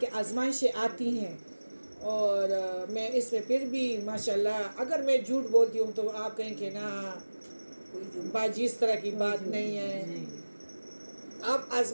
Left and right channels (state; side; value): inverted; both; correlation -1.00